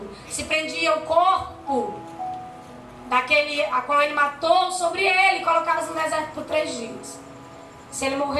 se prendia o corpo daquele a qual ele matou sobre ele, colocava no deserto por 3 dias. Se ele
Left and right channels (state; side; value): identical; both; correlation 1.00